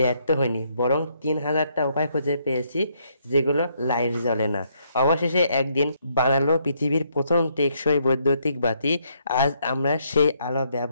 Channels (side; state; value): both; inverted; correlation -0.72